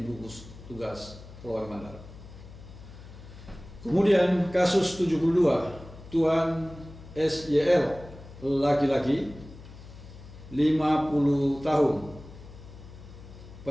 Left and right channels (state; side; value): noise; left; hum, 17 dB below the sound